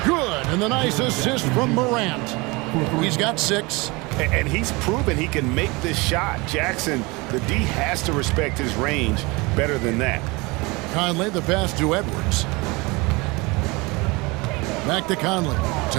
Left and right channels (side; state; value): left; quieter; 25.2 dB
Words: Good. And the nice assist from Morant. He's got 6. And he's proven he can make this shot. Jackson, the D has to respect his range better than that. Conley, the pass to Edwards. Back to Conley.